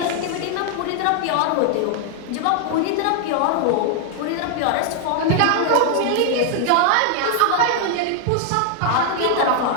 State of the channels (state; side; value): different; both; correlation 0.00